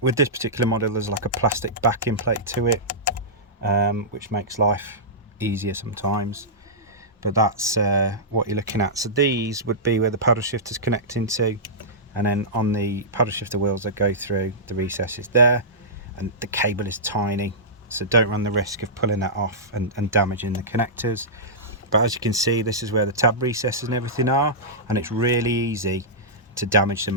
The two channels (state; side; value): normal; both; correlation -0.14